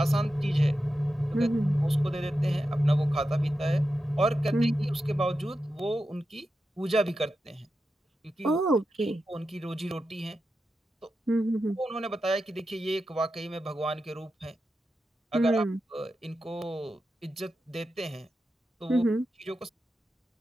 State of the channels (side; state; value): both; normal; correlation 0.90